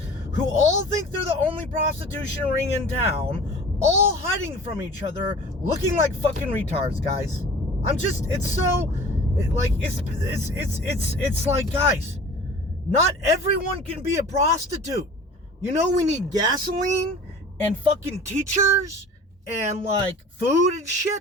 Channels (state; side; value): normal; both; correlation 0.43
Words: who all think they're the only prostitution ring in town, all hiding from each other, looking like fucking retards, guys. It's like, guys, not everyone can be a prostitute. We need gasoline and fucking teachers and, like, food and